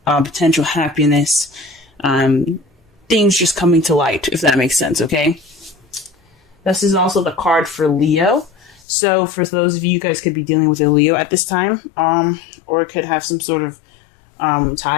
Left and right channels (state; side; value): drops out; right; at 8.8 s